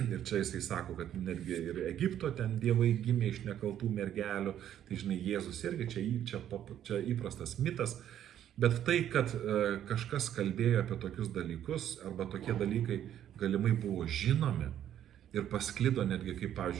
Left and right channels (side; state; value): left; quieter; 10.7 dB